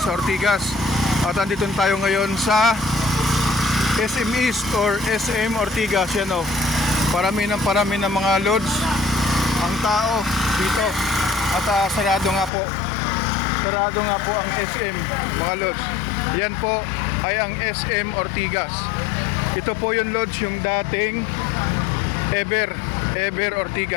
sa Ortigas. At andito tayo ngayon sa SM East or SM Ortigas. Yan o, parami ng mga lods ang tao dito. At sarado nga po ang SM mga lods. Yan po ay ang SM Ortigas. Ito po yung lods, yung dating Ever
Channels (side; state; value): right; drops out; at 12.5 s